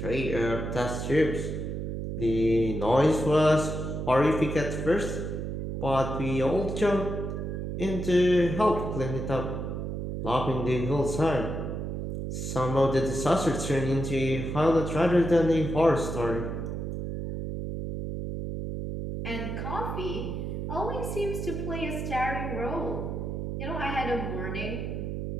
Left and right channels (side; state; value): right; noise; hum, 4 dB below the sound